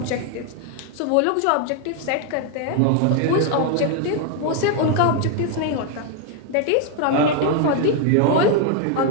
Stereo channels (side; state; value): both; different; correlation 0.00